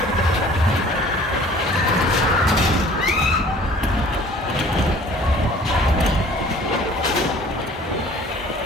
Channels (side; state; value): both; normal; correlation 0.50